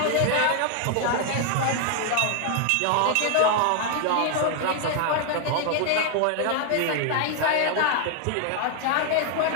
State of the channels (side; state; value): both; different; correlation 0.00